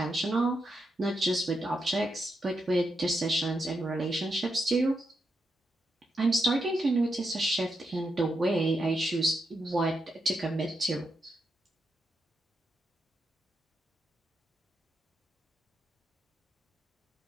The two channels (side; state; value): both; normal; correlation 0.83